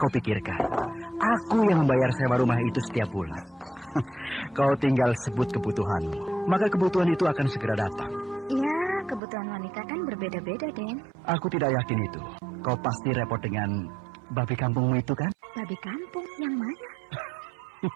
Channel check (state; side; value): drops out; left; at 9.2 s